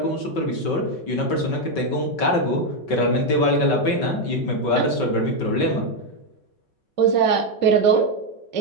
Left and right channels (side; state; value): right; late; 5.3 ms